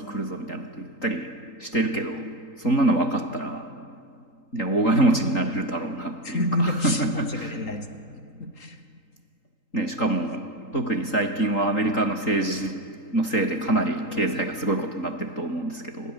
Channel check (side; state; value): right; late; 3.8 ms